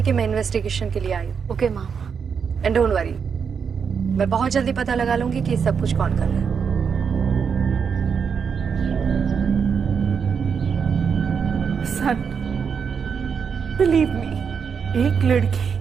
कि मैं इन्वेस्टिगेशन के लिए आई हूँ। Okay ma'am. And don't worry, मैं बहुत जल्दी पता लगा लूंगी कि सब कुछ कौन कर रहा है। सन, बिलीव मी, एक लड़की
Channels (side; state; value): left; quieter; 6.5 dB